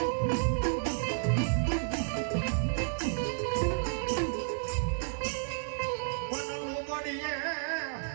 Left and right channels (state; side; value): silent; left; 57 dB below the other